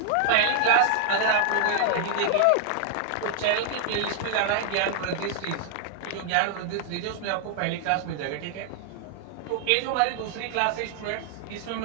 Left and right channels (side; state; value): both; different; correlation 0.00